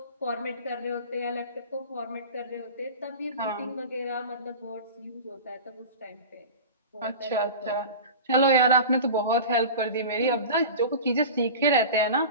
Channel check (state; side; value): inverted; both; correlation -0.33